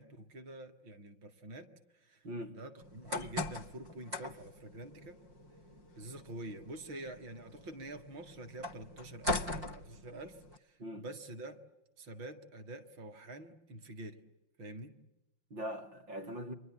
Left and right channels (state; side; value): late; left; 5.7 ms